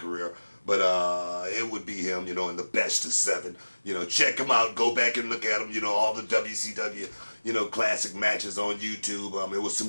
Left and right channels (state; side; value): inverted; both; correlation -1.00